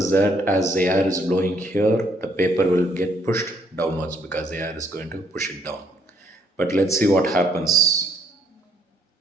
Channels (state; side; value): normal; both; correlation 0.68